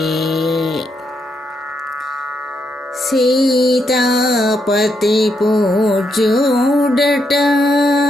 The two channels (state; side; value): normal; both; correlation 0.79